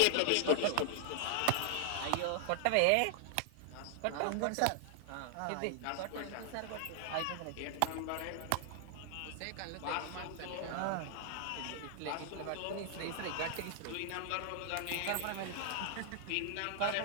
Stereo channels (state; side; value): different; both; correlation 0.00